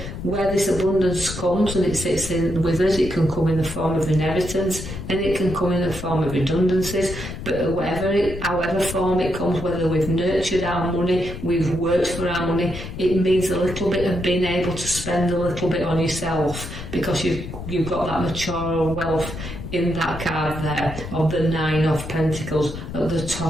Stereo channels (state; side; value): noise; left; rumble, 9 dB below the sound